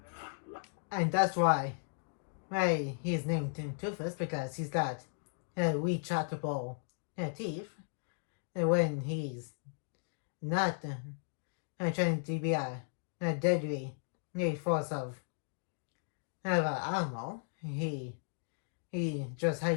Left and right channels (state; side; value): silent; right; digital silence